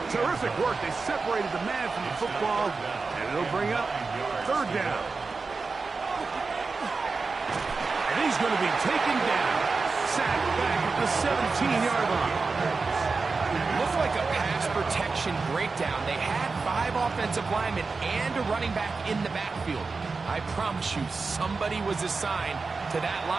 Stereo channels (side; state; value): left; quieter; 4.3 dB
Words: Terrific work. They separated the man from the football, and it'll bring up third down. And he's going to be taken down. Sacked back at the 17-yard line. Looked like a pass protection breakdown. They had 5 offensive linemen and a running back in the backfield. I promise you, somebody was assigned to that